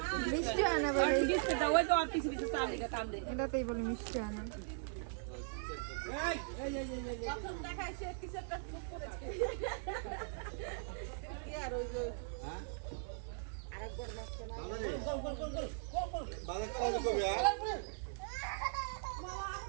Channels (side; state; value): left; silent; digital silence